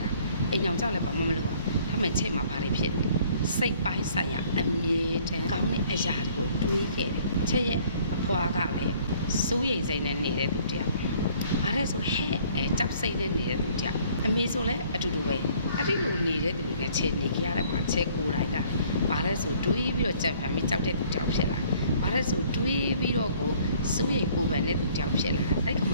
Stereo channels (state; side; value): inverted; both; correlation -0.58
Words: ရအိမ်ကြောင်ကြောက်လည်းဘာမှမလုပ်ရဒါမဲ့ချက်မှာဘာတွေဖြစ်နေစိတ်ပိုင်းဆိုင်ရာအမြဲတမ်းကောင်းတဲ့အရာတွေကိုတွေးခဲ့တယ်ချက်ရဲ့အဖွားကလည်းစိုးရိမ်စိတ်နဲ့နေတဲ့သူတယောက်ဘာလဲဆိုဟဲ့ကြောက်စိတ်နဲ့နေတဲ့သူတယောက်အမေဆိုလည်းအတူတူပဲအဲ့ဒီလိုနေတဲ့သူနဲ့ချက်နေကြရတယ်မှာချက်ကိုယ်တိုင်ကဘာလဲဆိုတွေးပြီးတော့ကြံဖန်ပြီးကြောက်တဲ့သူတယောက်ဖြစ်လာဘာလဲဆိုတွေးပြီးတော့ကိုစိုးရိမ်ပူပန်တဲ့သူတယောက်ဖြစ်လာအဲ့ဒီကမ